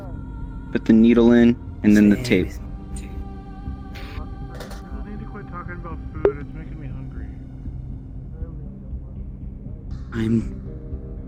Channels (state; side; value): identical; both; correlation 1.00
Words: put the needle in and then the tape. I need to quit talking about food. It's making me hungry. I'm